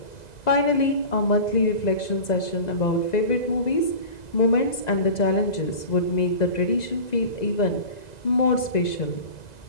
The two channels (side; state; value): right; late; 2.0 ms